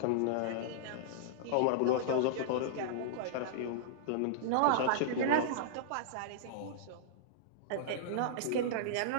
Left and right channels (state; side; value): different; both; correlation -0.02